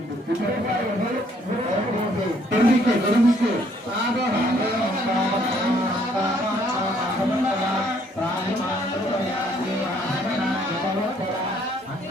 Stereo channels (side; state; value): both; normal; correlation 0.65